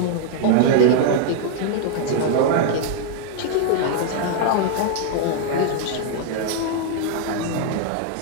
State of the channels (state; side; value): different; both; correlation 0.00